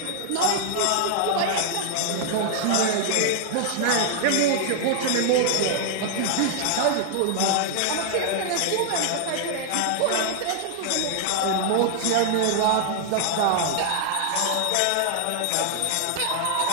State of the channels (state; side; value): different; both; correlation 0.00